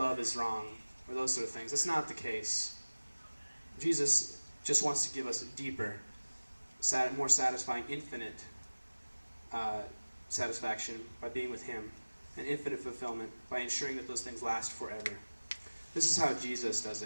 is wrong, or those sort of things. That's not the case. Jesus just wants to give us a deeper, more satisfying, infinite satisfaction by being with him, and infinite fulfillment by ensuring that those things last forever. This is how Jesus does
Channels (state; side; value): inverted; both; correlation -1.00